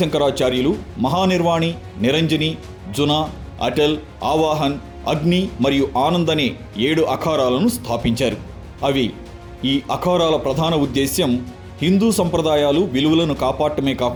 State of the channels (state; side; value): identical; both; correlation 1.00